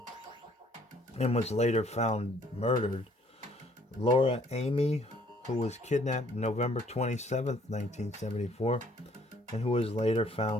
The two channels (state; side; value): normal; both; correlation 0.61